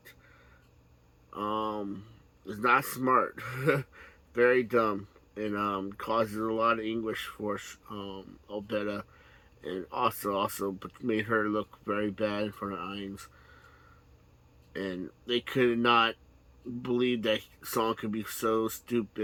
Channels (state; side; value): identical; both; correlation 1.00